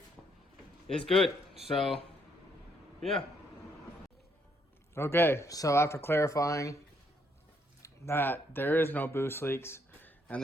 is good. So, yeah. Okay, so after clarifying that there is no boost leaks, and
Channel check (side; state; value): both; normal; correlation 0.72